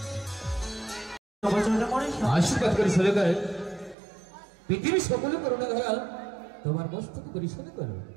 আশীর্বাদ করি শোনো গো, পৃথিবীর সকলে করুণা ধরা তোমার মস্তক করি শোনো করো।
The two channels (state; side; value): drops out; left; at 4.0 s